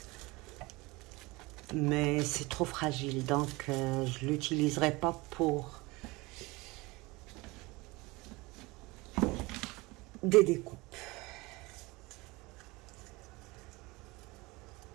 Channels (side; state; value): left; quieter; 23.1 dB